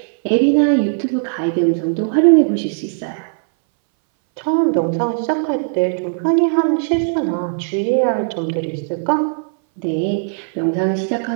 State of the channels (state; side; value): silent; left; 62 dB below the other